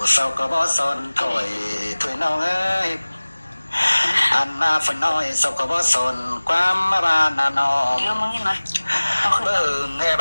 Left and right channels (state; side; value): inverted; both; correlation -1.00